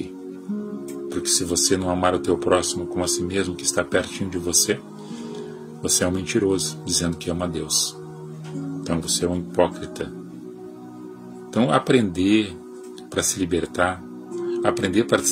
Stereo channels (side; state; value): both; identical; correlation 1.00